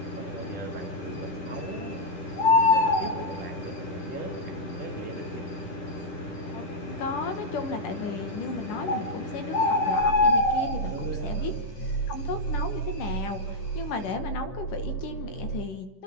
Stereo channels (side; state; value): right; late; 10 ms